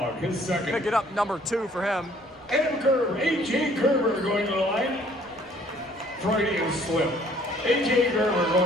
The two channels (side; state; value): right; noise; rumble, 29 dB below the sound